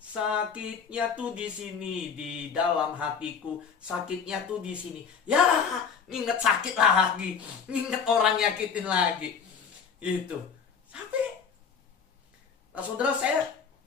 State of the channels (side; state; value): right; quieter; 6.3 dB